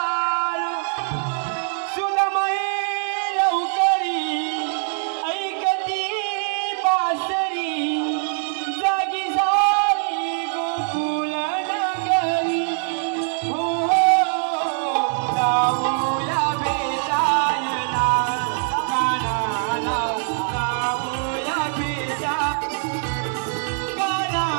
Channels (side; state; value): left; silent; 64 dB below the other